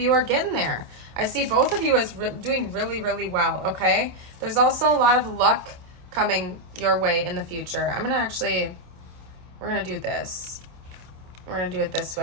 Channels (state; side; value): late; left; 27 ms